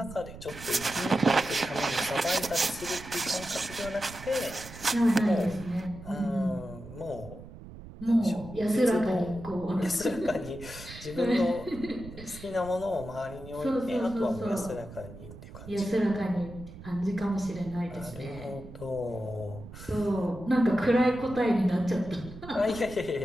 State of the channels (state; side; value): noise; right; rumble, 15 dB below the sound